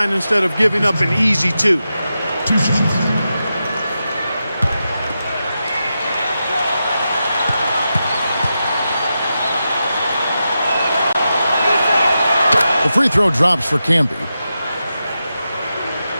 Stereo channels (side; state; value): both; inverted; correlation -0.89